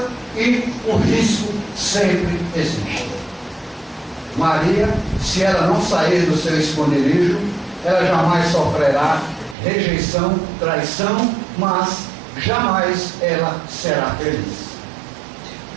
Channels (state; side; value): drops out; left; at 9.6 s